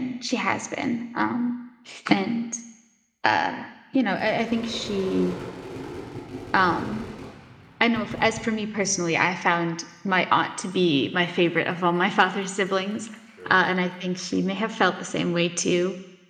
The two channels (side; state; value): both; identical; correlation 1.00